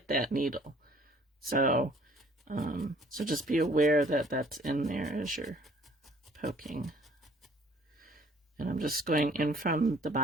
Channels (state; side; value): normal; both; correlation 0.57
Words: that needle. So, so just be aware that that's in there as you're poking. And I'm just going in from the